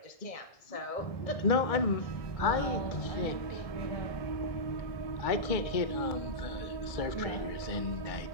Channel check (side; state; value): right; late; 1.6 ms